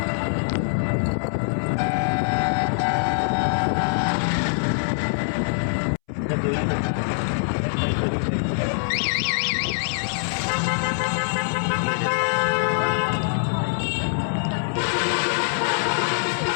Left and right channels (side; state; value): right; silent; 63 dB below the other